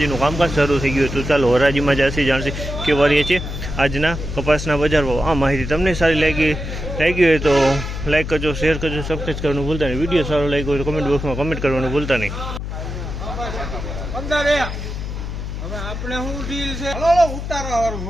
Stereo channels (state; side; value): noise; left; hum, 6 dB below the sound